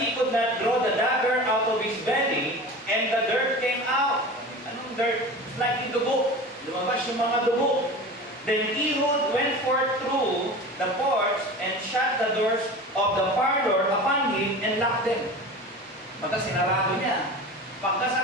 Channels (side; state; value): both; normal; correlation 0.34